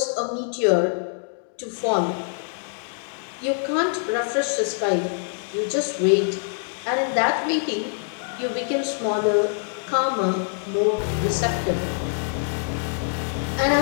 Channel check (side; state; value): right; silent; 62 dB below the other